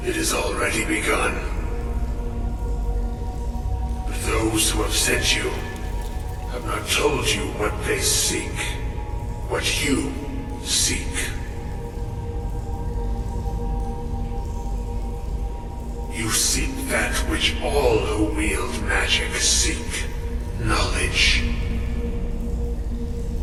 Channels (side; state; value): both; identical; correlation 1.00